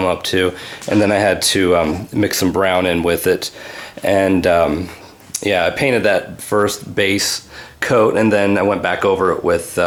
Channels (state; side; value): identical; both; correlation 1.00